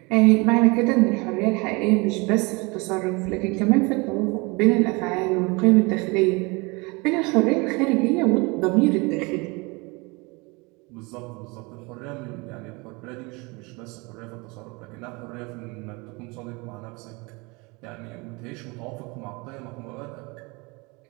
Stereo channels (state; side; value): quieter; left; 27.0 dB